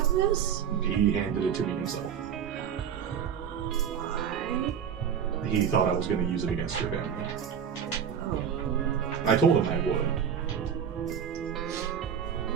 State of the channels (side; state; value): left; quieter; 8.1 dB